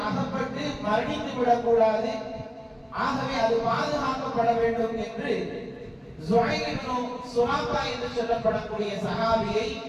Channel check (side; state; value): both; identical; correlation 1.00